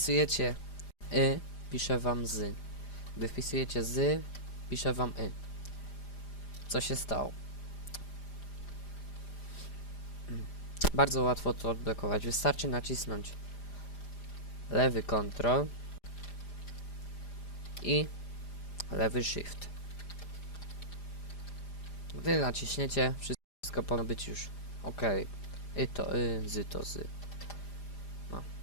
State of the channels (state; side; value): late; right; 5.0 ms